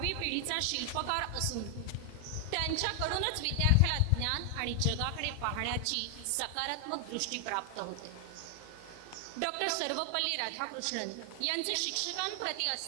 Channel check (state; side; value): different; both; correlation 0.00